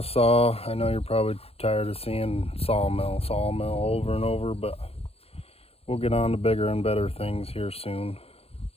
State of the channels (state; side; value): late; right; 0.29 ms